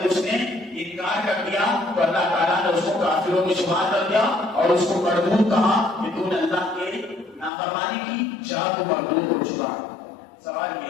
اس نے انکار کر دیا تو اللہ تعالیٰ نے اس کو کافروں میں شمار کر دیا اور اس کو مردود کہا کہ تو نے اللہ کے نافرمانی کی, جا تو مردود ہو چکا. سوال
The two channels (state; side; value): drops out; right; at 7.5 s